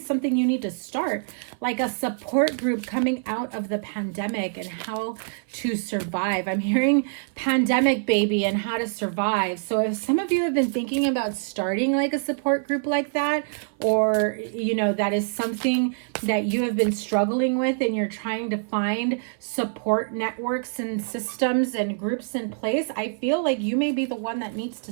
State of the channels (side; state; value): left; silent; 55 dB below the other